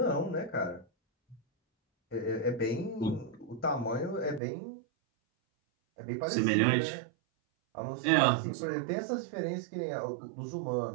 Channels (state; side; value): drops out; left; at 4.4 s